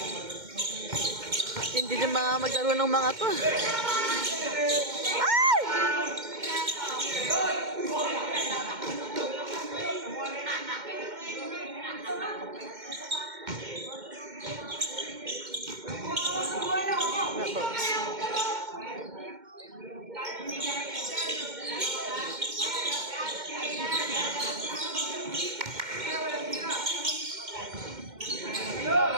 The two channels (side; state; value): left; late; 2.1 ms